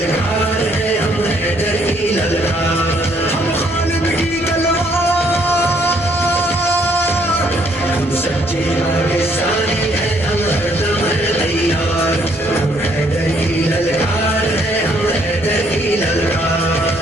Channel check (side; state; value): both; normal; correlation 0.67